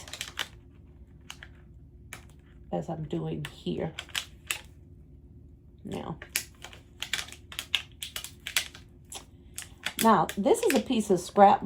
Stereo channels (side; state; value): both; identical; correlation 1.00